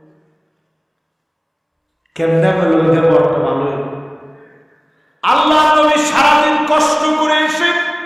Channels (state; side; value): identical; both; correlation 1.00